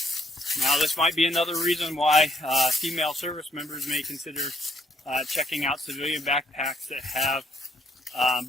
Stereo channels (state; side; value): normal; both; correlation 0.70